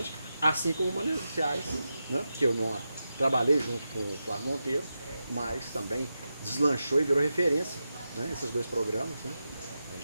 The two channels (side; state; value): both; inverted; correlation -0.90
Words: assim como o Mananciais, né? Que eu não trabalhei junto com o Flávio Monteiro, mas também deslanchou e virou referência, né? Esses 2 programas, né? A